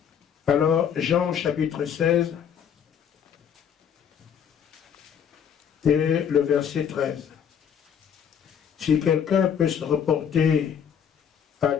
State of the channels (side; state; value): right; quieter; 8.0 dB